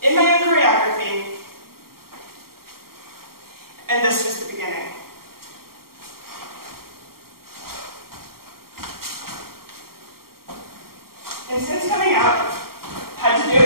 in my own choreography, and this was the beginning. And since coming out, I've had to do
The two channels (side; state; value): left; late; 0.93 ms